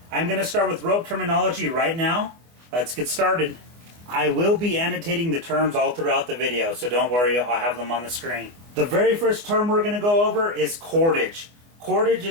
I'm going to start with rope terminology right now. Let's get started. I will be annotating the terms all throughout the video, so don't worry, I'll have them on the screen. The very first term we're going to go over is cordage. Cordage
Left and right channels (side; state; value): left; late; 24 ms